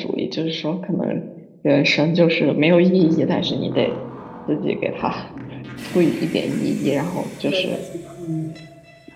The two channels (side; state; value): both; identical; correlation 1.00